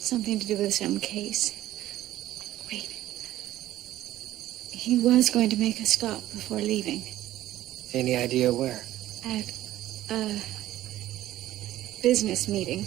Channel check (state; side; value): quieter; left; 14.2 dB